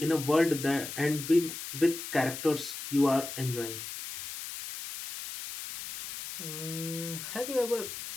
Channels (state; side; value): noise; left; hiss, 8 dB below the sound